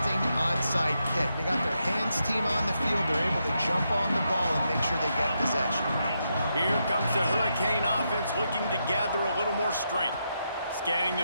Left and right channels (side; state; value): both; inverted; correlation -0.83